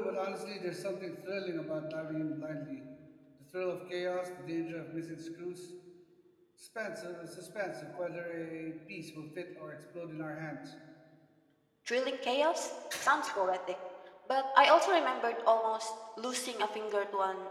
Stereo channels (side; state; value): both; identical; correlation 1.00